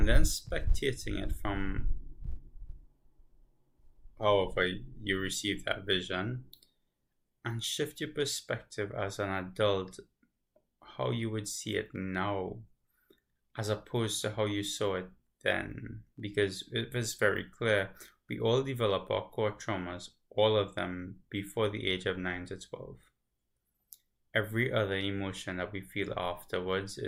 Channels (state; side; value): identical; both; correlation 1.00